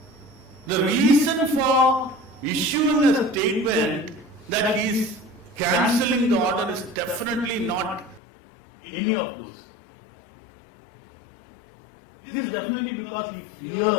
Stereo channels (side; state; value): right; drops out; at 8.2 s